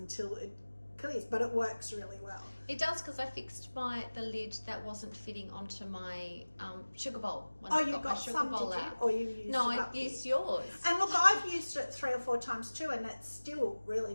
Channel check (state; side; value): inverted; both; correlation -1.00